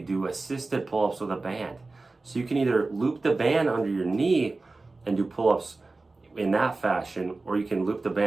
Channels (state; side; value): quieter; left; 3.4 dB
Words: do assisted pull-ups with a band. So you can either loop the band under your knee and do pull-ups in that fashion, or you can loop the